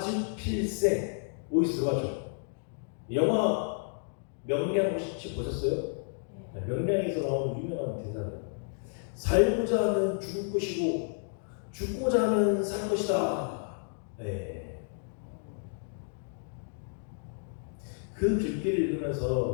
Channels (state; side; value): silent; right; digital silence